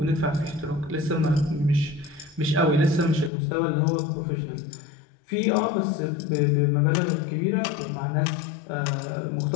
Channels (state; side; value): drops out; right; at 3.3 s